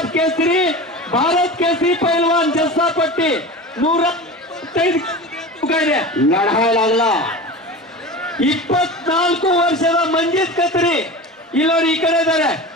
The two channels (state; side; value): normal; both; correlation 0.31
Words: केसरी, भारत केसरी पहलवान जस्सा पट्टी लढायला लागला। 24 ವರ್ಷದ ಮಂಜಿತ್ ಖತ್ರಿ ಇಲ್ಲೋಡಿ ಈ ಕಡೆ ಇದ್ದಾರೆ।